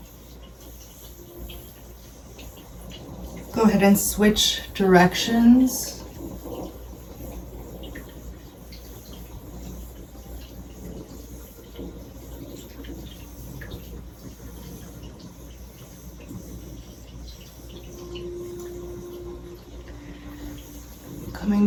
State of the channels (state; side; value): identical; both; correlation 1.00